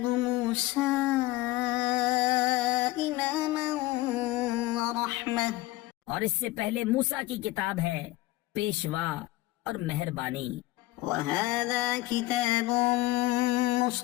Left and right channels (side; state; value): right; quieter; 18.3 dB